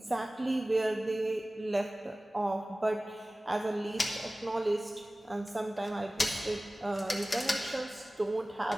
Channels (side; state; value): both; normal; correlation 0.97